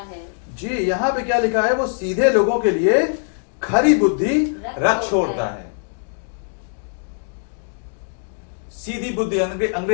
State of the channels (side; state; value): right; silent; digital silence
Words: जी, यहाँ पे क्या लिखा है? वो सीधे लोगों के लिए खरी बुद्धि रख छोड़ता है। सीधी बुद्धि,